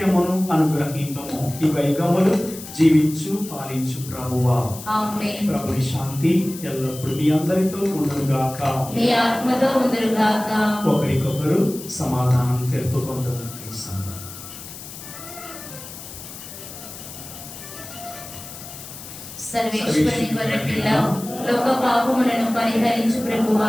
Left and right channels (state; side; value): noise; left; hiss, 13 dB below the sound